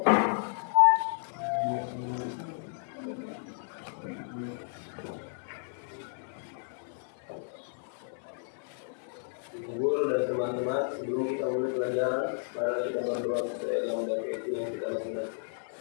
Guru dan teman-teman, sebelum kita mulai pelajaran, mari kita berdoa sesuai agama dan keyakinan yang kita lakukan.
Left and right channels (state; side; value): silent; right; digital silence